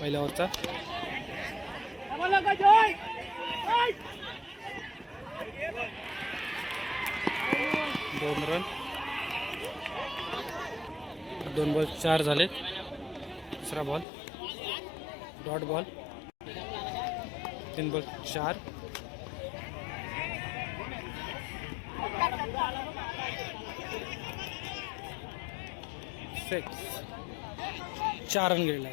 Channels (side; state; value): right; drops out; at 14.1 s